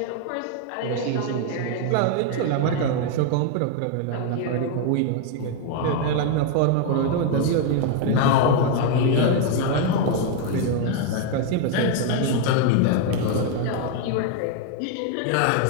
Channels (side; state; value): both; different; correlation 0.01